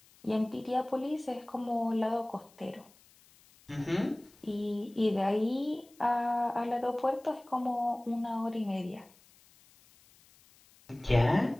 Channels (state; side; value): noise; left; hiss, 28 dB below the sound